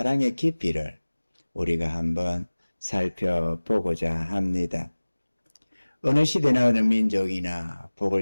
깊이를 우리가 한번 살펴보고자 합니다. 어느 시대나 어느 민족이나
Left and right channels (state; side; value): inverted; both; correlation -1.00